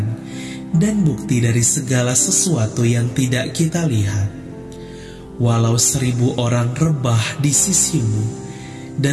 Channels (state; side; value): identical; both; correlation 1.00